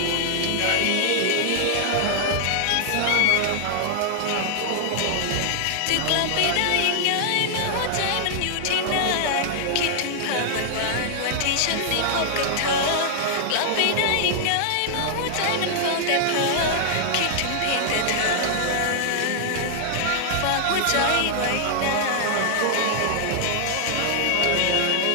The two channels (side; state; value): both; different; correlation -0.01